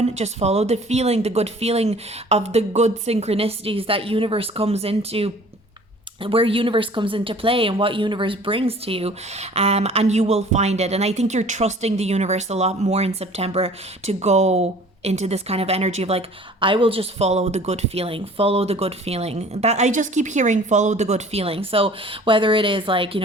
Just follow the feeling, the good feeling of the good synchronicities that where universe comes into play and what universe brings to you, and you will find it. And I think you're trusting the universe a lot more in September to go into this kind of energy of like, I will just follow the good feeling, that I just keep hearing, follow the good feeling. So whether it is like,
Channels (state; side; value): normal; both; correlation 0.49